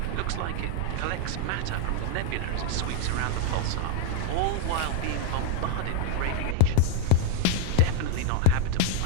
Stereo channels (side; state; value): both; different; correlation 0.00